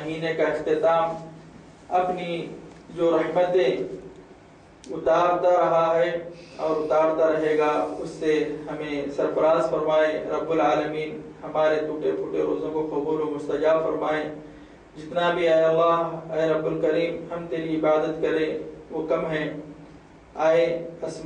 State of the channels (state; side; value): identical; both; correlation 1.00